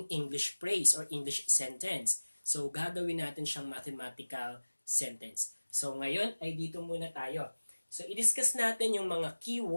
English phrase or English sentence. So, gagawin natin siyang mathematical sentence. So, ngayon ay dito muna tayo. So, i-discuss natin yung mga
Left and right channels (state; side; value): inverted; both; correlation -1.00